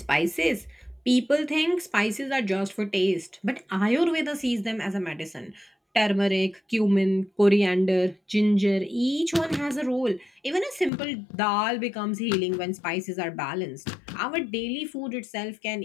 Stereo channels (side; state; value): right; drops out; at 10.9 s